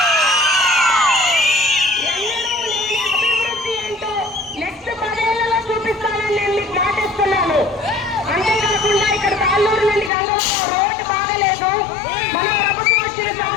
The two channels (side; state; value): right; drops out; at 10.1 s